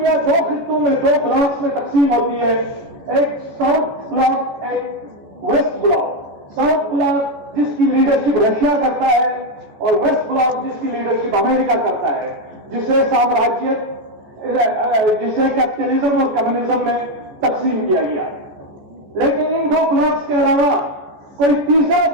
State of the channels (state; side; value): late; left; 14 ms